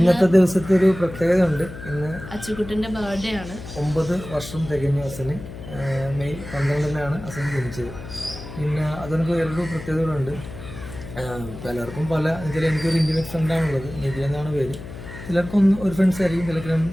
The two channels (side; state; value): left; noise; hum, 12 dB below the sound